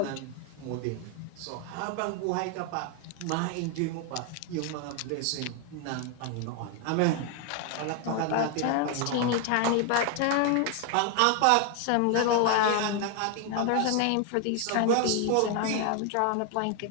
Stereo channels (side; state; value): both; different; correlation 0.00